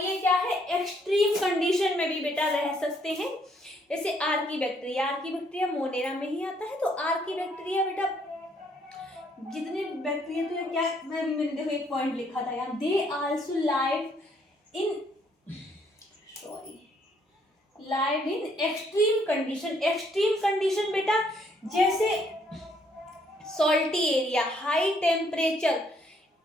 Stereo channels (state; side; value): normal; both; correlation 0.68